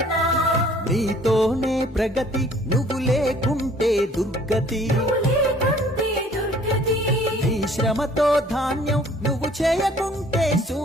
నీతోనే ప్రగతి, నువ్వు లేకుంటే దుర్గతి. నీ శ్రమతో ధాన్యం, నువ్వు చేయకుంటే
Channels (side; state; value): both; normal; correlation 0.56